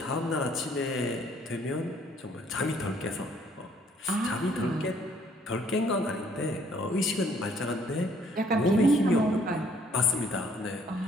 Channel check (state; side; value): normal; both; correlation 0.63